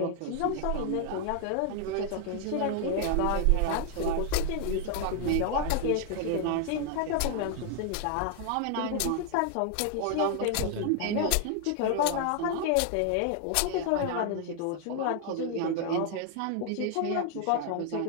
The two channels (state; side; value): different; both; correlation 0.00